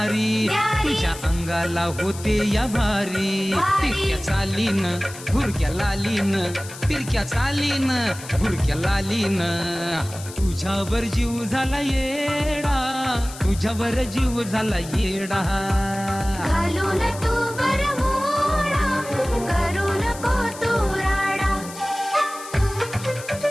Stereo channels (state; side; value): noise; left; hiss, 14 dB below the sound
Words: तुझ्या अंगाला होते या भारी. तिरक्या चालीनं भुरक्या लालीनं, तिरक्या चालीनं भुरक्या लालीनं, तुझ्यावर जीव झाला येडा, तुझ्यावर जीव झाला येडा. घालून तू बरमुडा, करू नको तू राडा.